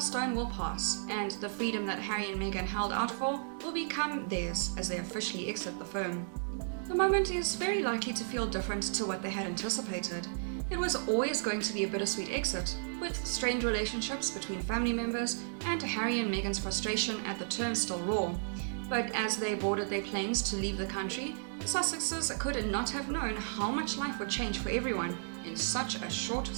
will pass, and the freedom that Harry and Meghan held out for will become theirs as they officially exit the firm. The moment is very likely to feel different to what they had anticipated. It was always going to be a bittersweet exit, with strained relationships between family members and Harry and Meghan's frustration at the term still raw. But as they boarded their planes to leave the country, the Sussexes could not have known how much life would change for everyone in such a short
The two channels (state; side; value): silent; left; 55 dB below the other